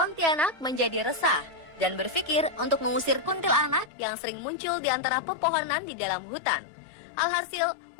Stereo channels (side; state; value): right; drops out; at 3.9 s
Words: menjadi resah dan berpikir untuk mengusir kuntilanak yang sering muncul di antara pepohonan di dalam hutan. Alhasil,